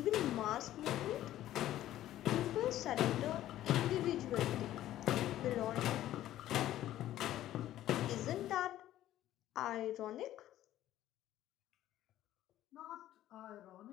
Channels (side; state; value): right; quieter; 13.4 dB